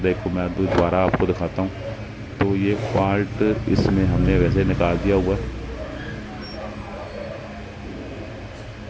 है को मैं दोबारा आपको दिखाता हूँ। तो ये फॉल्ट इसमें हमने वैसे निकाल दिया हुआ है।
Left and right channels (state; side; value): identical; both; correlation 1.00